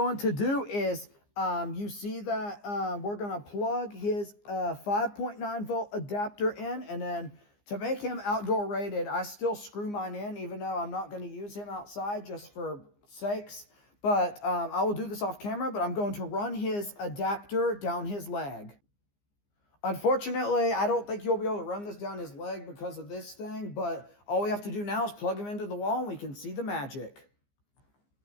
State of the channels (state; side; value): late; right; 15 ms